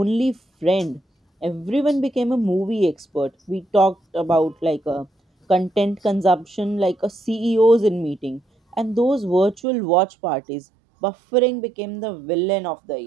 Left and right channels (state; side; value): drops out; left; at 9.6 s